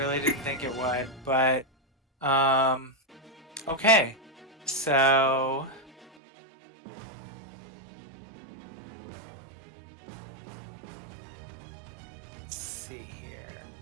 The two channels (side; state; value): left; drops out; at 6.1 s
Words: didn't think it would, but okay. So let's see here.